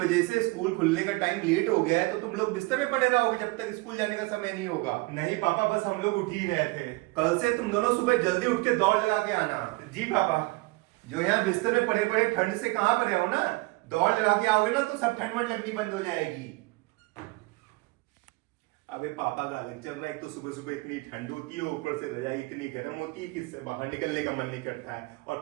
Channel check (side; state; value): left; quieter; 23.8 dB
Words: से स्कूल खुलने का टाइम लेट हो गया है तो तुम लोग बिस्तर में पड़े रहोगे जब तक स्कूल जाने का समय नहीं होगा। नहीं पापा, बस हम लोग उठ ही रहे थे। कल से तुम दोनों सुबह जल्दी उठ के दौड़ लगा के आना। जी पापा। जो यहाँ बिस्तर में पड़े पड़े ठंड से कहाँ पड़े हो ना, दौड़ लगा के आओगे ना तो सब ठंड वंड लगनी बंद हो जाएगी। अबे पापा का अलग चल रहा है, एक तो सुबह सुबह इतनी ठंड होती है, ऊपर से रजाई इतनी गर्म होती है कि इससे बाहर निकलने का मन नहीं करता है, और